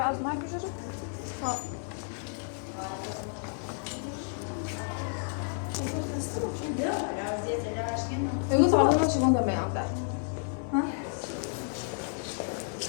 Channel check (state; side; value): silent; right; 57 dB below the other